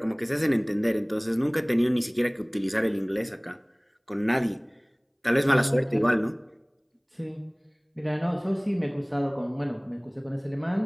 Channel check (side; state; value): both; identical; correlation 1.00